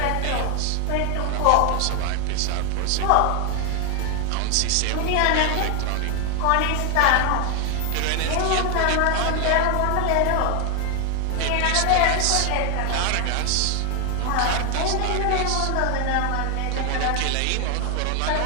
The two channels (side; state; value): both; different; correlation 0.00